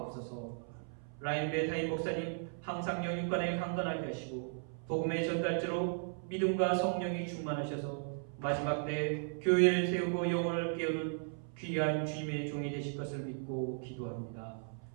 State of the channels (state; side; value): silent; left; 54 dB below the other